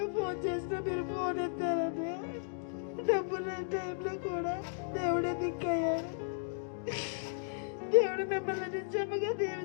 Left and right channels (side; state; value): right; silent; digital silence